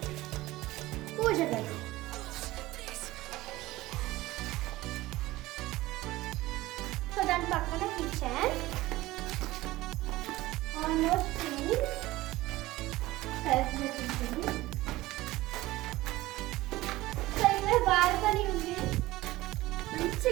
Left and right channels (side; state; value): left; quieter; 18.0 dB